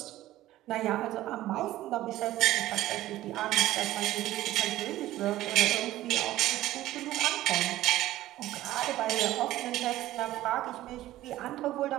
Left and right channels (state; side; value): quieter; left; 15.0 dB